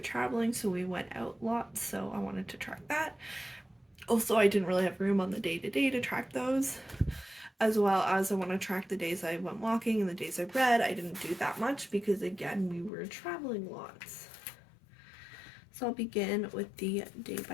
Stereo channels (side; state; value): right; drops out; at 12.9 s